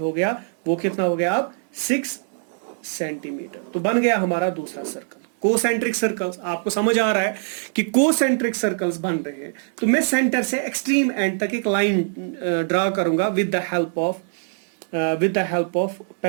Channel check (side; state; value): left; silent; digital silence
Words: गया, वो कितना हो गया अब 6 सेंटीमीटर। तो बन गया हमारा दूसरा सर्कल। कोसेंट्रिक सर्कल्स, आपको समझ आ रहा है कि कोसेंट्रिक सर्कल्स बन रहे हैं। तो मैं सेंटर से एक्सट्रीम एंड तक एक लाइन ड्रा करूंगा with the help of